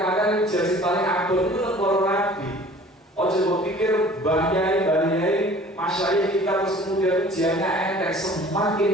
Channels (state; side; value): normal; both; correlation 0.48